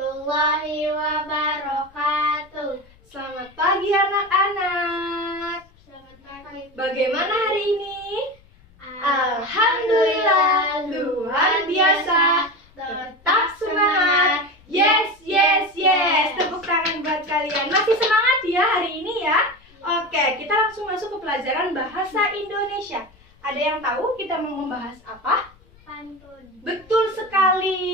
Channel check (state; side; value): noise; left; rumble, 28 dB below the sound